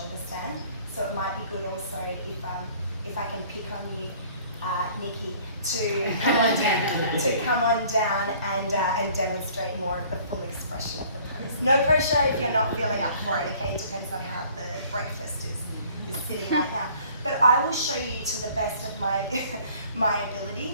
stand, so it might be good also if I can pick on you, Nikki, to come on down and demonstrate more of the full expression of the pose. No pressure if you're not feeling up for it, okay? It depends on how the breakfast is sitting right now. But I will show you to the best of my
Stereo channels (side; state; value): both; inverted; correlation -0.54